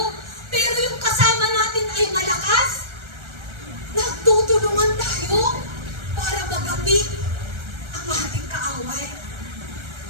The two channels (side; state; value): left; late; 1.3 ms